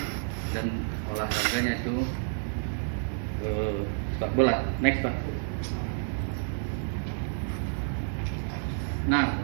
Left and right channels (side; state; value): left; silent; digital silence